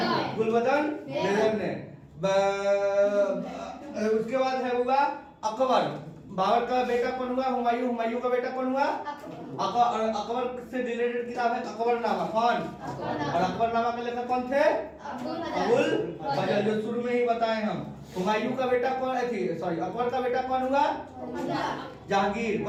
बेगम ने। उसके बाद है हुआ अकबर। बाबर का बेटा कौन हुआ? हुमायूं का बेटा कौन हुआ? अकबर से रिलेटेड किताब है अकबरनामा। कौन? और अकबरनामा के लेखक कौन थे? अबुल फजल, जो शुरू में ही बताए हम। हुमायूं का बेटा कौन थी? सॉरी, अकबर का बेटा कौन हुआ? जहांगीर।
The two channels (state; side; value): identical; both; correlation 1.00